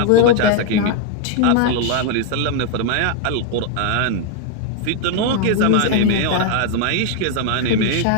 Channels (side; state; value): both; different; correlation 0.01